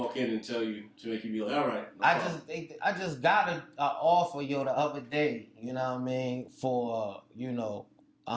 in and tell you to make you be like, all right? No I problem. just got a offer, yo, the other day. You know what I mean? For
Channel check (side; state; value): both; identical; correlation 1.00